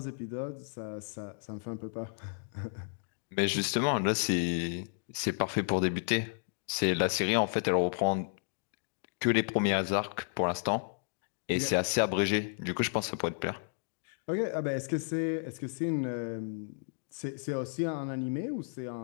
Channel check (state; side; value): silent; right; digital silence